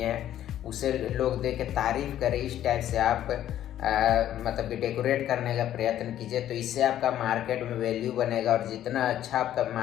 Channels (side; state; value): right; quieter; 11.8 dB